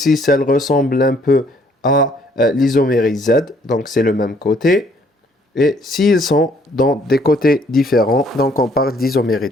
elle ressemble un peu à l'isomérie Z. Donc, c'est le même côté. Et s'ils sont dans des côtés différents, donc on parle d'isomérie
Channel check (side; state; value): both; normal; correlation 0.64